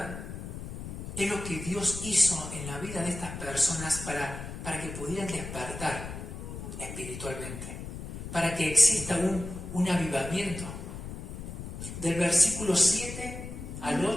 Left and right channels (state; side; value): noise; left; rumble, 9 dB below the sound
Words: es lo que Dios hizo en la vida de estas personas para que pudieran despertar espiritualmente, para que exista un avivamiento. Del versículo 7 al